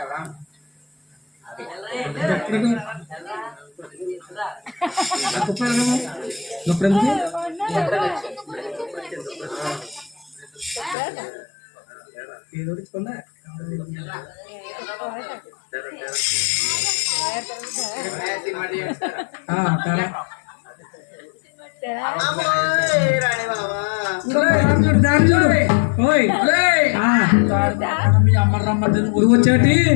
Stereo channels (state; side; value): drops out; right; at 11.0 s